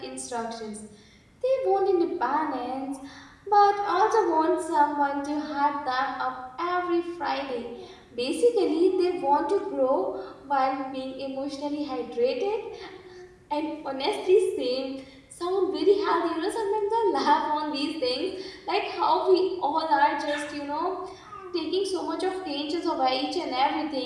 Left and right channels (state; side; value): identical; both; correlation 1.00